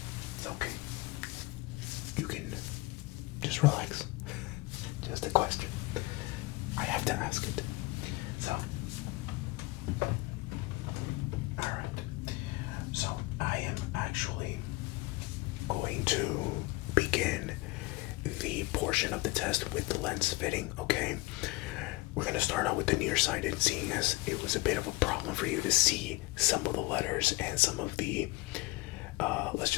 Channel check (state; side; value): quieter; right; 22.1 dB